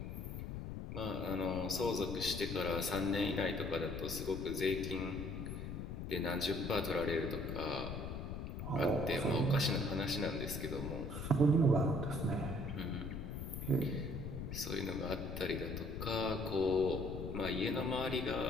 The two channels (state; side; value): noise; left; rumble, 6 dB below the sound